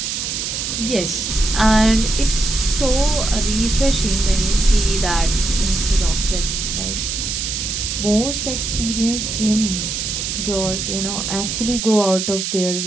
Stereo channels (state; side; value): noise; right; hiss, 3 dB below the sound